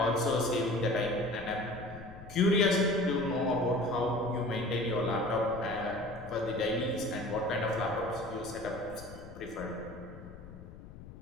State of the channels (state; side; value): noise; left; rumble, 16 dB below the sound